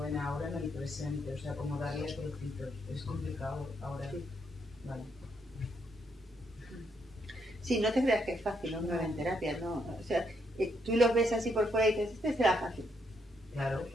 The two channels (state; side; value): normal; both; correlation 0.76